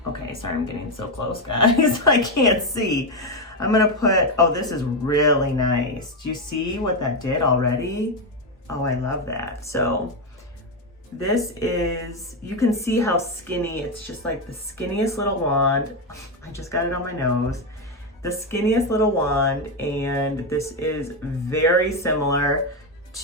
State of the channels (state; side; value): normal; both; correlation 0.08